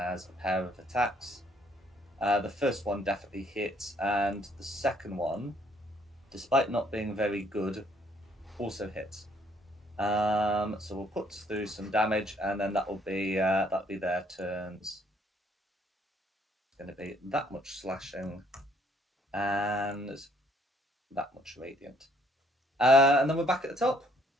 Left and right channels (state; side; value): normal; both; correlation 0.65